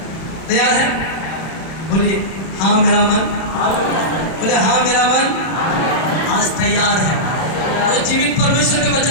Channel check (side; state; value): right; late; 31 ms